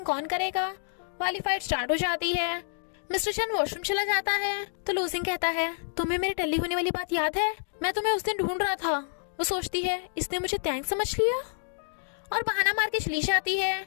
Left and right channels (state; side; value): silent; right; digital silence